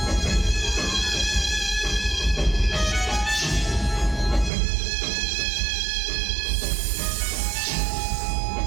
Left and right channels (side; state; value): left; drops out; at 4.5 s